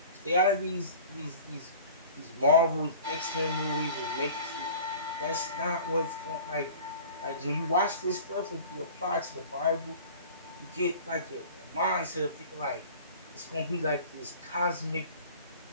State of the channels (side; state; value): both; inverted; correlation -0.43